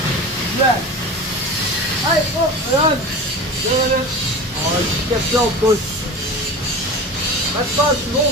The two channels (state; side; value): normal; both; correlation 0.32